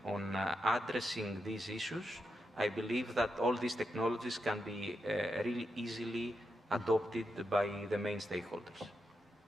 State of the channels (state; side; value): normal; both; correlation 0.85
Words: on addressing these issues, I believe that all these technologies can be really easily adopted by the main stakeholders.